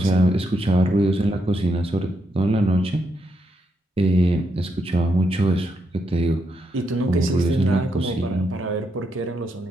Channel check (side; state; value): both; normal; correlation 0.80